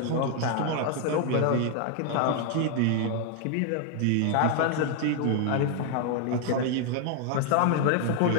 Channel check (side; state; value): both; different; correlation 0.00